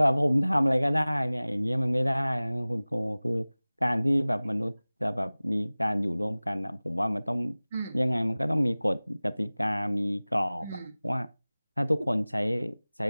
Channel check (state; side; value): inverted; both; correlation -0.99